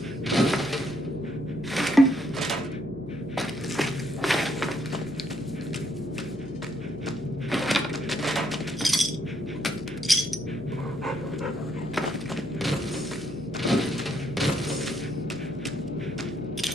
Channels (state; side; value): noise; left; hum, 17 dB below the sound